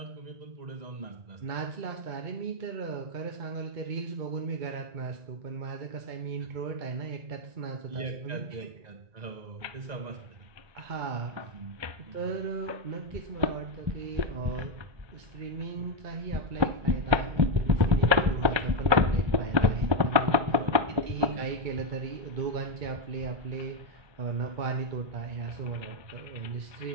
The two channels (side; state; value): left; late; 1.3 ms